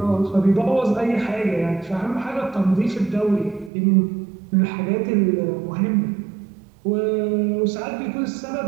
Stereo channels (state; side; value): drops out; left; at 3.7 s